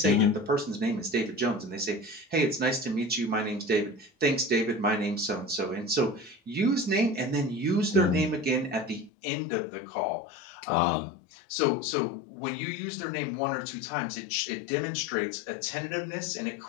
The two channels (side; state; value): right; drops out; at 9.1 s